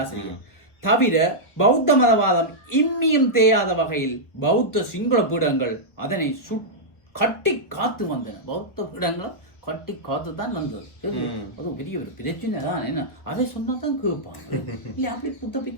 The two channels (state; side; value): late; right; 1.1 ms